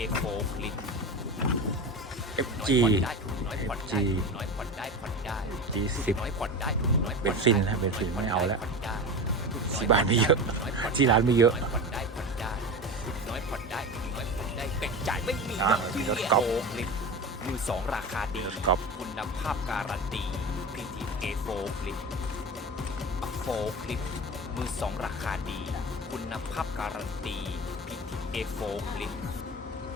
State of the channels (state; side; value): normal; both; correlation 0.28